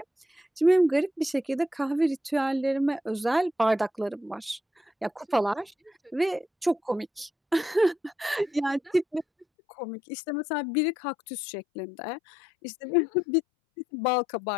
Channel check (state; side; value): drops out; right; at 9.5 s